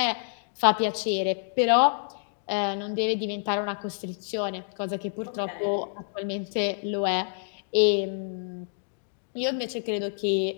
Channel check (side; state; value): right; silent; digital silence